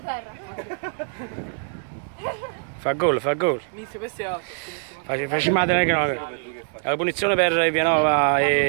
Fa gol, fa gol. Facciamo la punizione per Vianova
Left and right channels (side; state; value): left; silent; digital silence